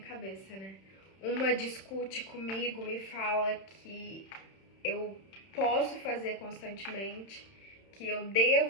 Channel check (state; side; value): late; right; 31 ms